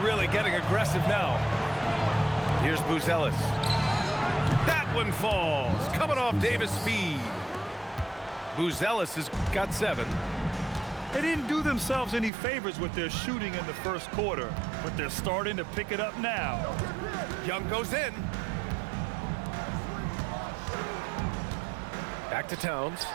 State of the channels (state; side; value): drops out; left; at 12.3 s